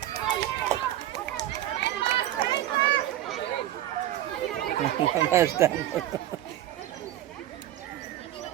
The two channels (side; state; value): left; quieter; 13.3 dB